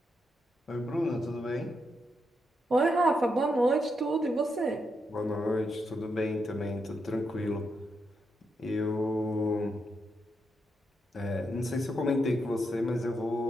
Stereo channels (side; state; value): both; normal; correlation 0.82